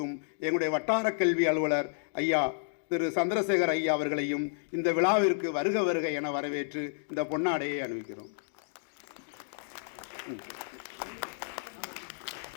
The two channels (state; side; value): silent; right; digital silence